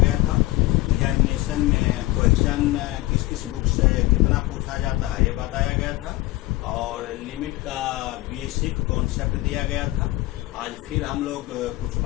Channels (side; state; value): right; quieter; 18.9 dB